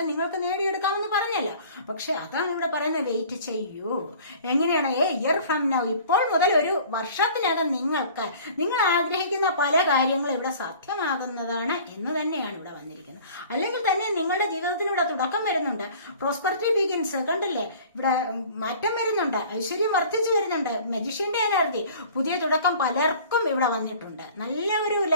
നിങ്ങൾക്ക് നേടിയെടുക്കാമെന്ന് പറഞ്ഞല്ലോ. പക്ഷെ അതാണ് ഇവിടെ പറയുന്നത്, വെയിറ്റ് ചെയ്യൂ. എങ്ങനെയാണ്? ഇയർ ഫ്രം നൗ, ഇപ്പോൾ മുതൽ ഒരു വർഷത്തിനകം നിങ്ങൾ ആഗ്രഹിക്കുന്ന പല കാര്യങ്ങളും ഇവിടെ സാധ്യമാകുന്നതാണ് എന്ന് തന്നെയാണ് ഇവിടെ വന്നിരിക്കുന്നത്. അല്ലെങ്കിൽ തന്നെ നിങ്ങളുടെ ജീവിതത്തിന് ഇവിടെ തുടക്കം വരുന്നുണ്ട്. പ്രോസ്പെറിറ്റി ബിഗിൻസ്, കണ്ടില്ലേ? ഇവിടെ മാറ്റം വരുന്നുണ്ട്, ഐശ്വര്യം വർദ്ധിച്ചു വരുന്നുണ്ട്, മജിഷ്യന്റെ എനർജി, പുതിയ തുടക്കം പലർക്കും ഇവിടെ വന്നിട്ടുണ്ട്. നല്ല ഒരു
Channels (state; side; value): inverted; both; correlation -0.47